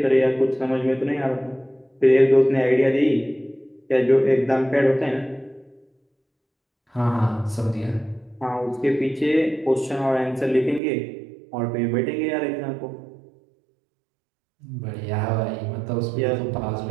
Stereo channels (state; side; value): drops out; left; at 10.8 s